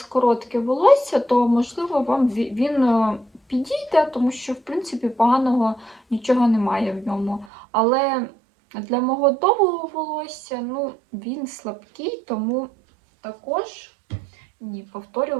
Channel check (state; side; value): drops out; left; at 7.5 s